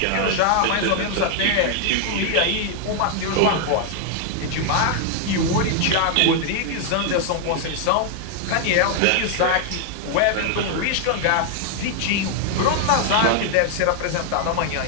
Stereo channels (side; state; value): both; different; correlation 0.00